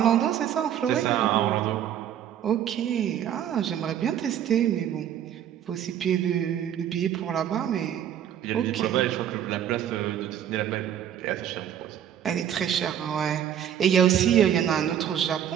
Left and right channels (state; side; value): quieter; left; 10.0 dB